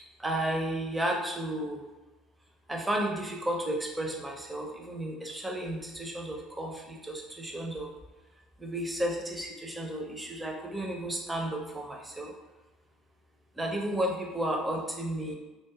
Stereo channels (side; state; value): both; normal; correlation 0.67